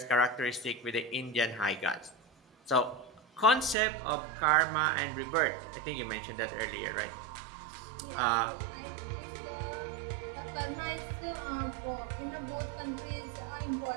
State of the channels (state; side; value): drops out; left; at 3.8 s